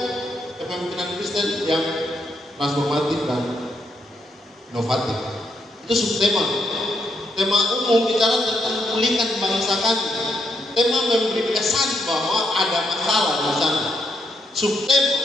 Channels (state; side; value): normal; both; correlation 0.77